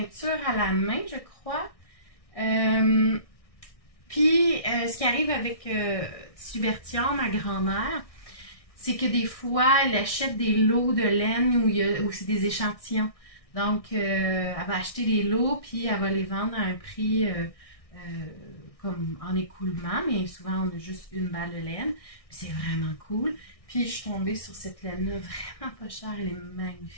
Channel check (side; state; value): right; late; 1.6 ms